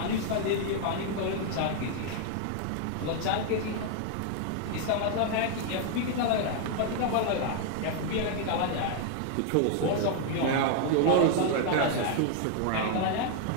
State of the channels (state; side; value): different; both; correlation 0.00